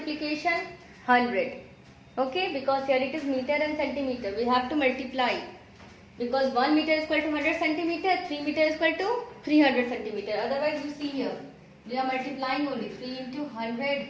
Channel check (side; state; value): both; identical; correlation 1.00